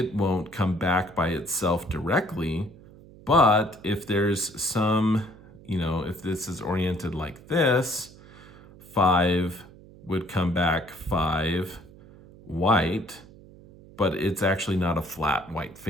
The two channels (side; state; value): right; noise; hum, 21 dB below the sound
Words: won't come back by itself directly. But if there's some, if this is oriented like this, 5 would come back 5 white, but it's actually not a flat white